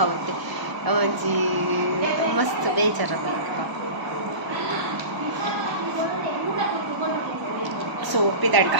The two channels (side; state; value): left; late; 1.0 ms